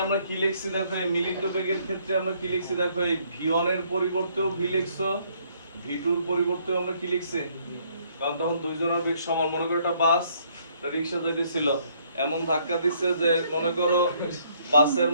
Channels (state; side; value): inverted; both; correlation -0.66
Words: আমরা কি লিখছি, দেখো এই মিলিত বেগের ক্ষেত্রে আমরা কি লিখছি, দেখো এই v1 এর পরিবর্তেও v লিখছো, v2 এর পরিবর্তেও আমরা কি লিখছি, কারণ তখন দুইজনের বেগ সমান। মনে করো একটা বাস রিক্সা যাইতেছিল, এমন ধাক্কা দিচ্ছে যে মনে করো বাসের